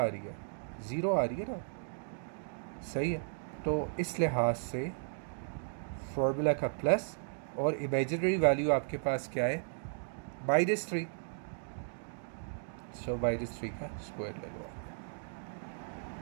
आ रही है, 0 आ रही है ना। सही है, तो इस लिहाज से फॉर्मूला का प्लस और इमेजिनरी वैल्यू आपके पास क्या है, -3। सो -3 का स्क्वायर ले लो।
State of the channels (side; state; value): left; silent; digital silence